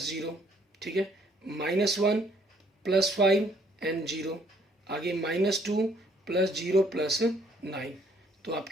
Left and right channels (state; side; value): normal; both; correlation 0.64